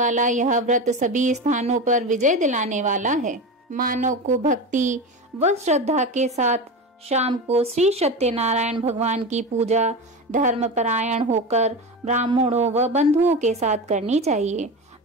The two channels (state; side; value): normal; both; correlation 0.23